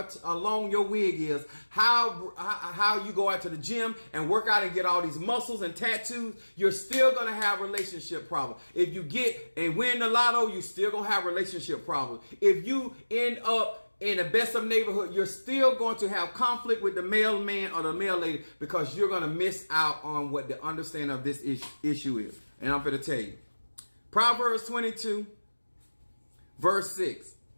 or long your wig is, how you go out to the gym and work out and get all these muscles and tattoos, you're still going to have relationship problems. If you get and win the lotto, you're still going to have relationship problems. If you end up in the best of neighborhood, you're still going to have conflict with the male man or the male lady because you're going to miss out on what the understanding of this issue is. And I'm going to tell you. Proverbs 22, verse 6.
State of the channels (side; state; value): both; inverted; correlation -1.00